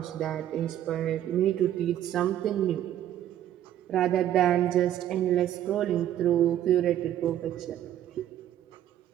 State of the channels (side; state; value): left; quieter; 11.7 dB